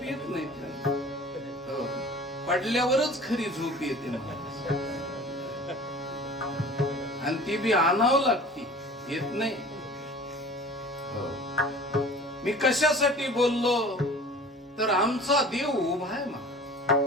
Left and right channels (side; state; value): both; normal; correlation 0.43